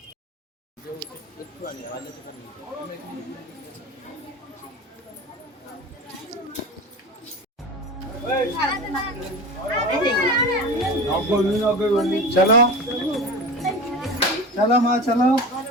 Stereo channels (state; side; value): normal; both; correlation 0.30